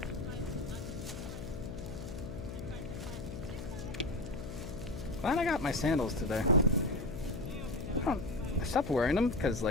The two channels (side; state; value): left; noise; hum, 8 dB below the sound